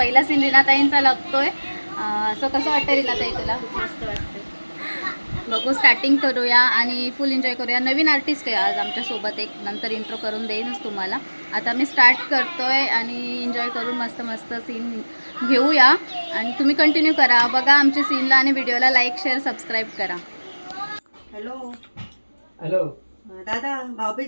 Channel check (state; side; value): inverted; both; correlation -1.00